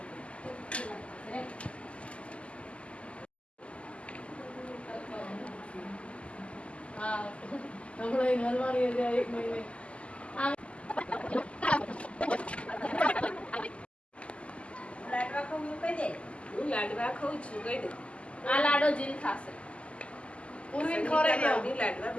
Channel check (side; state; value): right; late; 0.057 ms